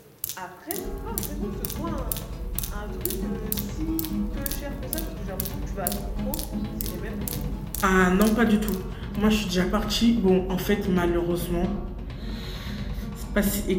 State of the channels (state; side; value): identical; both; correlation 1.00